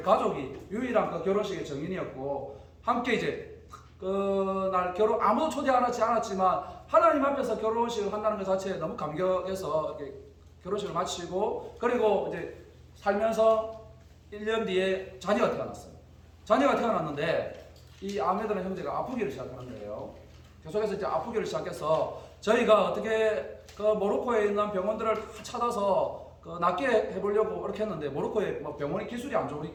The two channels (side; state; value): both; identical; correlation 1.00